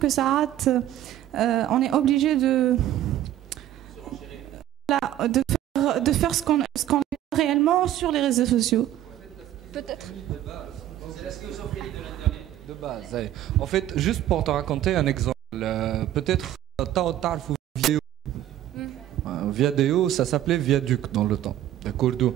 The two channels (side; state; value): left; quieter; 12.6 dB